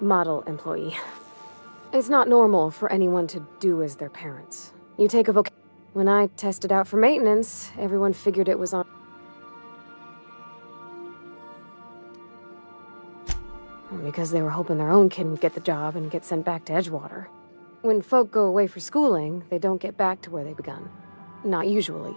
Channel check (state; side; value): inverted; both; correlation -1.00